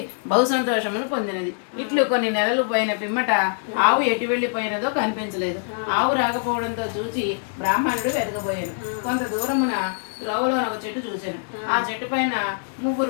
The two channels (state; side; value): silent; right; digital silence